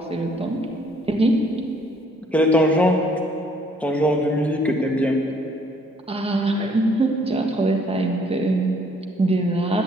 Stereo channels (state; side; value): normal; both; correlation 0.63